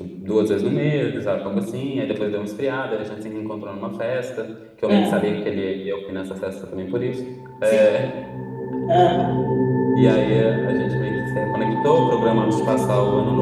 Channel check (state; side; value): identical; both; correlation 1.00